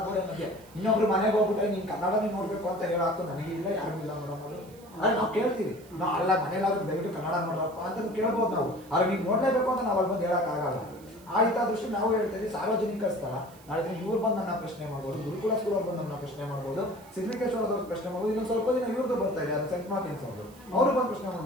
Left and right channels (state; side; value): noise; right; hiss, 25 dB below the sound